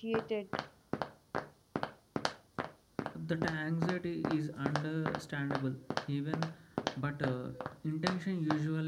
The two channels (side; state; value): both; identical; correlation 1.00